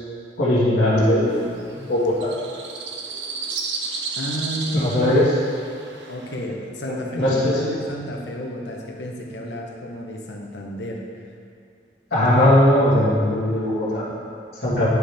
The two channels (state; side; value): normal; both; correlation 0.54